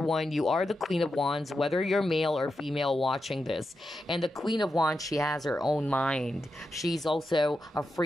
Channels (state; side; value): normal; both; correlation 0.88